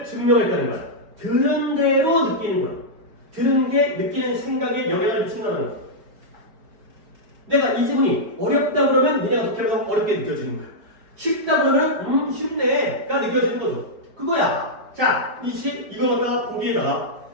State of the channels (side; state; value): left; late; 4.7 ms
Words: 증명했다는 거야. 들은 대로 느끼는구나. 들은 게 느끼는 생각에 영향을 미친다는 거야. 내가 이 지문이 어렵다 그러면 니네가 독해보다 어렵게 느껴지는 거야. 쉽다 그러면 쉽네가 느껴지는 거죠. 그거야. 자, 이거 갖다가 보기에다가